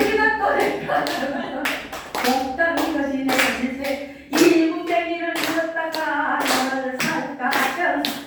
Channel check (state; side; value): identical; both; correlation 1.00